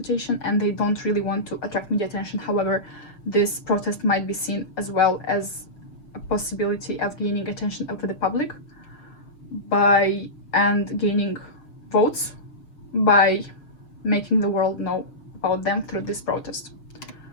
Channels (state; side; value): late; right; 6.3 ms